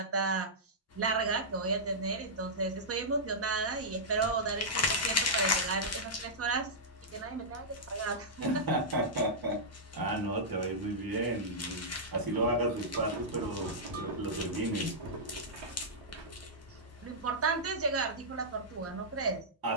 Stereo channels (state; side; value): normal; both; correlation -0.11